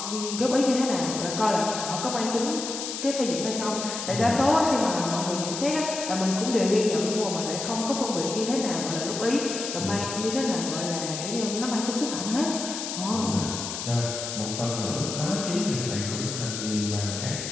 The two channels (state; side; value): noise; left; hiss, 5 dB below the sound